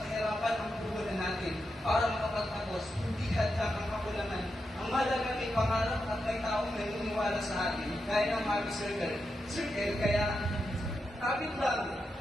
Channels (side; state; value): both; normal; correlation 0.86